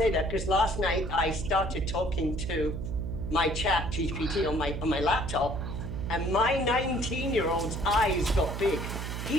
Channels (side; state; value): right; noise; hum, 5 dB below the sound